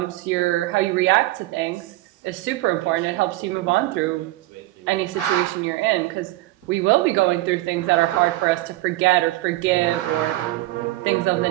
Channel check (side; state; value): left; quieter; 17.8 dB